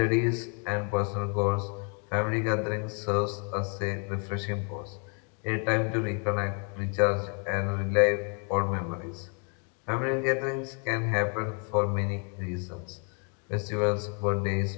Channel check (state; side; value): quieter; right; 39.6 dB